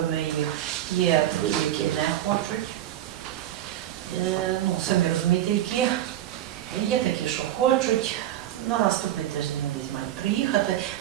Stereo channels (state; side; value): quieter; left; 12.6 dB